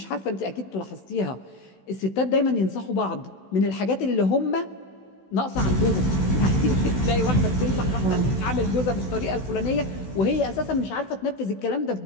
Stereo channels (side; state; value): right; late; 16 ms